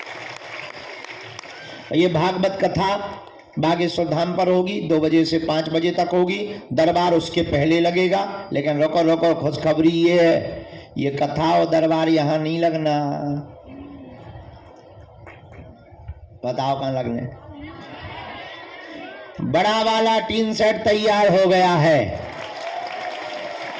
ये भागवत कथा बागेश्वर धाम पर होगी, 2 बजे से 5 बजे तक होगी। दरबार उसके पहले लगेगा। लेकिन रोको रोको, खुशखबरी ये है, ये कथा और दरबार यहाँ नहीं लगना। बताओ कहाँ लगने? बड़ा वाला टीन सेट तैयार हो गया है,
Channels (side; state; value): both; identical; correlation 1.00